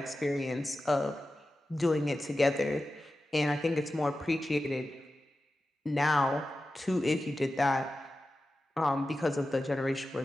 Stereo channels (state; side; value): normal; both; correlation 0.93